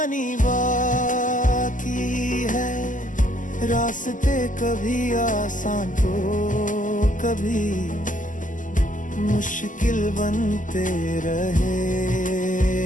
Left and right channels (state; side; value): late; right; 0.38 ms